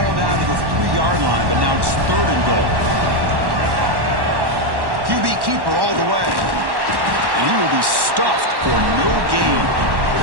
down to the 3-yard line, but now it's third and goal. QB keeper all the way. And he will be stuffed for no gain.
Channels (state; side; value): late; left; 1.1 ms